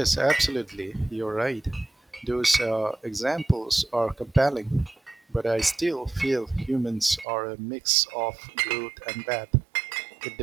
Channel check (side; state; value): left; drops out; at 7.2 s